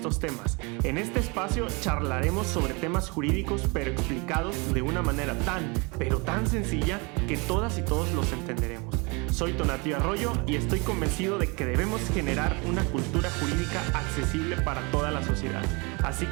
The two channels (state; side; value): quieter; left; 29.3 dB